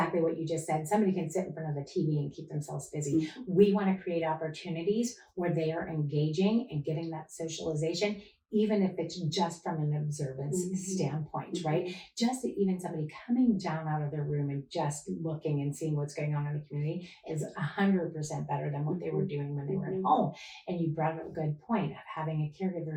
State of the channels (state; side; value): identical; both; correlation 1.00